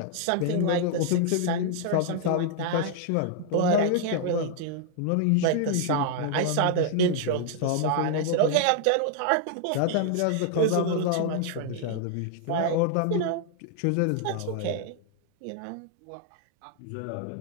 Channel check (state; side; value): different; both; correlation 0.00